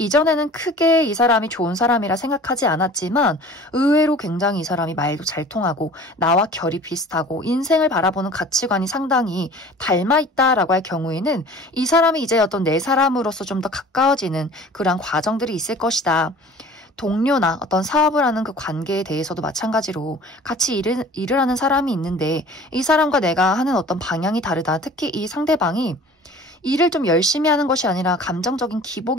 크게 이 사람이 좋은 사람이라 생각하지 않았지만 의외로 굉장히 이 사람이 말도 잘 통하고 나와 결이 비슷하고 인생을 바라보는 가치관이 상당히 닮아있다라고 할 경우에는 이 사람이 이제 어떤 내 사람으로서 좀 더 가까워지는 그러한 과정들이 있을 것이다. 동료나 어떤 사업을 하는 그 관계에 대해서도 마찬가지로 같이 일을 하는 사람이 있는데 이 사람과 내가 하는 어떤 방향이 다르다. 특히 이 상대방이 일을 좀 열심히 하는 것이 아니라 감정적인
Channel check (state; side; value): normal; both; correlation 0.45